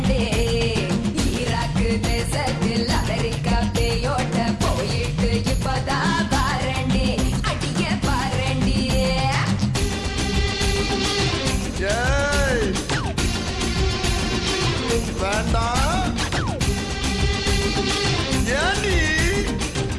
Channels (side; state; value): both; identical; correlation 1.00